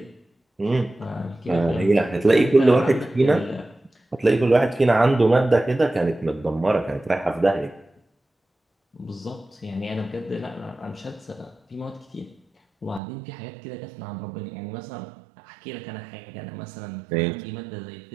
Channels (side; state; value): left; drops out; at 13.0 s